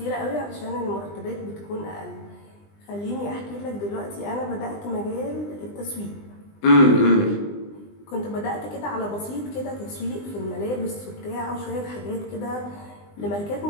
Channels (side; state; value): right; late; 20 ms